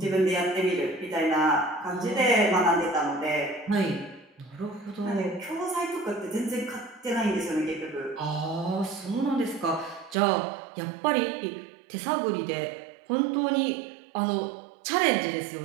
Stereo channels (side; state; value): left; drops out; at 10.2 s